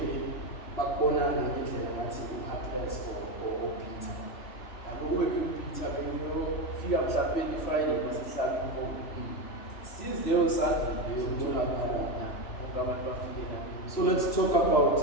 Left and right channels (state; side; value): late; right; 3.3 ms